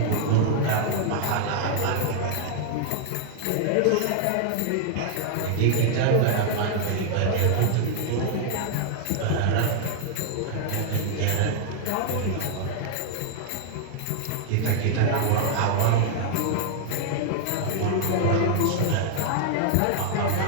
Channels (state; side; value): different; both; correlation 0.00